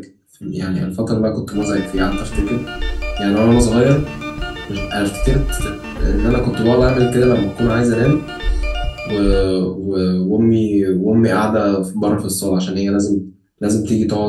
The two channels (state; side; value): identical; both; correlation 1.00